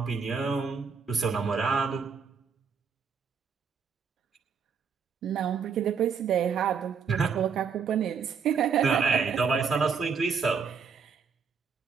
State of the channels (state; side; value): quieter; left; 6.0 dB